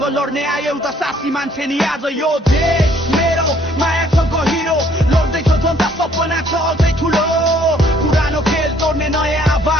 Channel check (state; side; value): normal; both; correlation 0.62